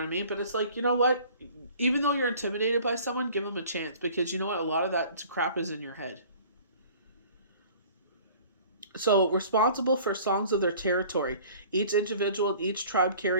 I mean? But it's like, you know what? Even though you're intimidated by someone, give them a chance. Because you know what? A lot of that crap is in your head. So, responsible for songs of their territory. Each individual, each tribe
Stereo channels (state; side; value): inverted; both; correlation -0.49